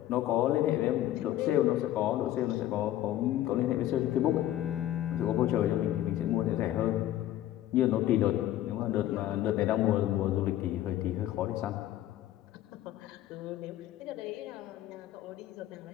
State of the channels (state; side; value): quieter; right; 13.3 dB